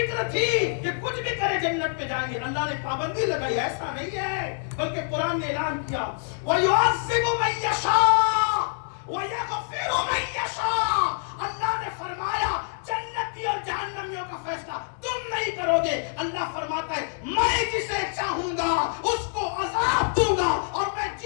تھی کہ کچھ بھی کرے جنت میں جائیں گے. اللہ نے پابندی لگائی، ایسا نہیں ہے، بلکہ قرآن نے اعلان کیا وَيُعَذِّبُ مَن يَشَاءُ وَيَغْفِرُ مَن يَشَاءُ. اللہ نے فرمایا جنتی اور جہنمیوں کا فیصلہ تم نہیں کرو گے. اللہ فرماتا ہے میں جسے چاہوں گا اس کو عذاب دوں گا اور میں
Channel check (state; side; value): silent; right; digital silence